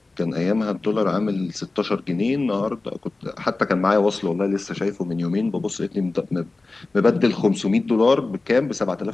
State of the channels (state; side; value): quieter; right; 3.4 dB